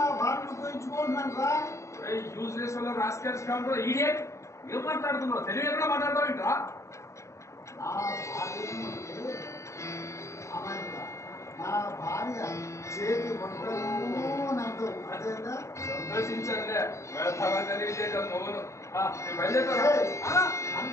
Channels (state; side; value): late; right; 0.14 ms